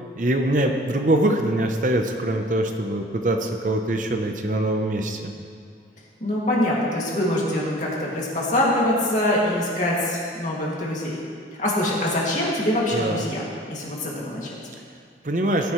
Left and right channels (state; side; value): normal; both; correlation 0.45